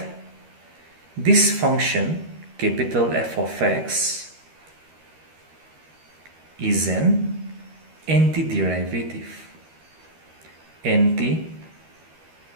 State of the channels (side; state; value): left; late; 13 ms